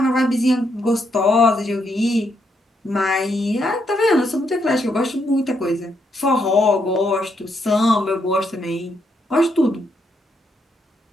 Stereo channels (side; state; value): both; normal; correlation 0.77